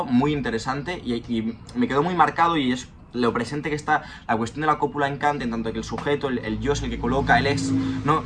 muy interesante, y me quedó muy marcado, y es lo presente que está la cuestión de la cópula en Kant, en tanto que el sujeto, el yo es el que coloca, el es, ¿no?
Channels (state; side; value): identical; both; correlation 1.00